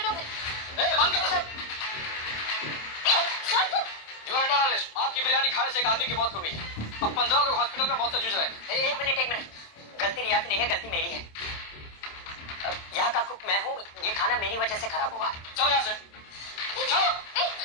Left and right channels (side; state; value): right; late; 27 ms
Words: हो गई। बंद करो सब। Sir You are under arrest. आपकी बिरयानी खाने से एक आदमी की मौत हो गई। अब 15 लोग हॉस्पिटल में मौत से जूझ रहे हैं। एक मिनट, गलती रिया की नहीं है, गलती मेरी है। यहाँ का कुक मैं हूँ, ये खाना मेरी वजह से खराब हुआ। चलो यहाँ से। चलो।